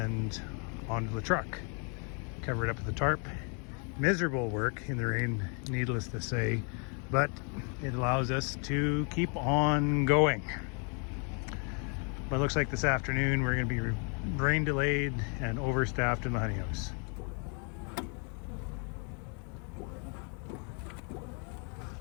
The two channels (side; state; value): right; quieter; 38.4 dB